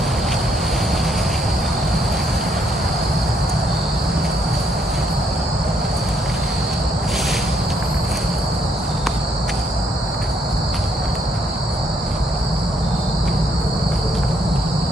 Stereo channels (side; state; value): both; normal; correlation 0.72